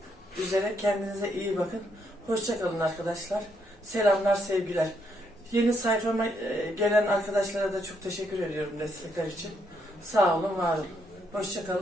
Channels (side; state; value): both; normal; correlation 0.75